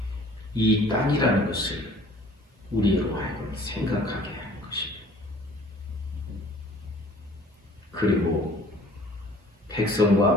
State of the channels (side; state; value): both; normal; correlation 0.52